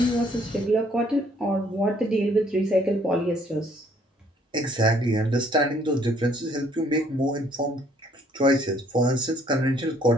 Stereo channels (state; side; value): normal; both; correlation 0.63